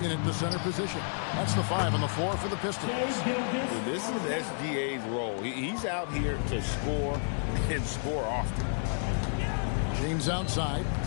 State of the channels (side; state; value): right; silent; digital silence